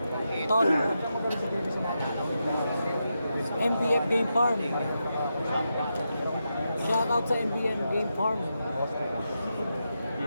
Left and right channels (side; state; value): both; inverted; correlation -0.86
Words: Tol. MBF Game Farm. Shoutout sa MBM Game Farm.